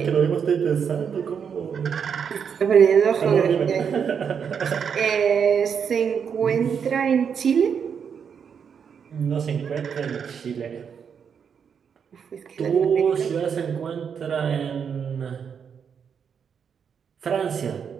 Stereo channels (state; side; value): quieter; left; 7.1 dB